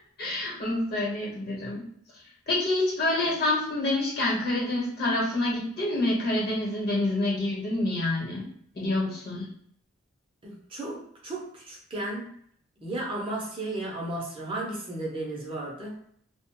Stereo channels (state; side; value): normal; both; correlation 0.52